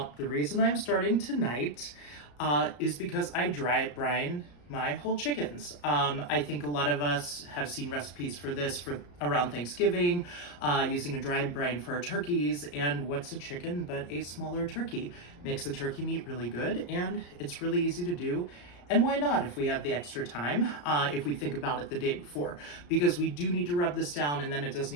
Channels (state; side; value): late; right; 34 ms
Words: The reason I'm starting tonight is because I dry brine my whole chickens. I think a lot of us have seen recipes for this for around Thanksgiving, using a dry brine for our turkeys. And what's a chicken but a smaller turkey? Makes the turkey meat really good, and it's really easy to do. And why not if we have the extra time, if we think about it the day before? Because we do need to rub this down, and then it does